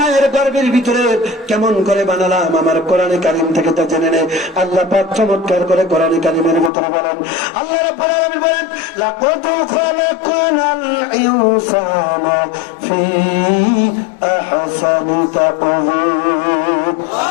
গর্ভের ভিতরে কেমন করে বানালাম আমার কোরআন কারীম থেকে তা জেনে নে। আল্লাহ পাক চমৎকার করে কোরআন কারীমের ভিতরে বলেন, আল্লাহ রাব্বুল আলামিন বলেন, লাকাদ খালাকনাল ইনসানা ফি আহসানি তাকওয়িম।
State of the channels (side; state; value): right; drops out; at 6.7 s